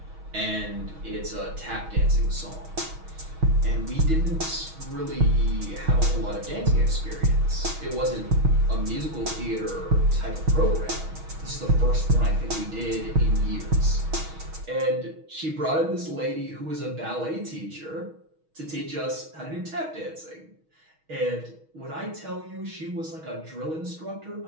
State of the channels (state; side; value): late; left; 6.3 ms